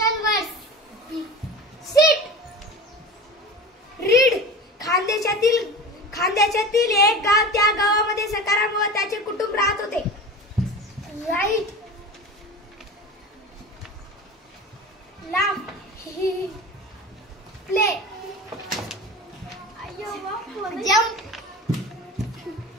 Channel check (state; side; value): normal; both; correlation 0.33